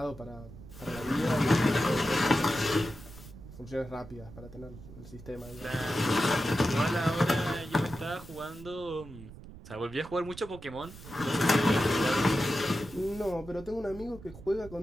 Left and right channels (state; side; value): noise; right; rumble, 16 dB below the sound